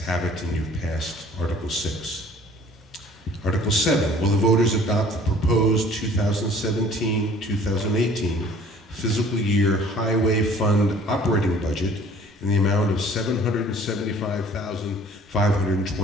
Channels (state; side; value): normal; both; correlation 0.52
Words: have it, and you've passed Article 6. Article 7, will the voters adopt the proposed 2017-2018 fiscal year highway fund operating budget in the amount of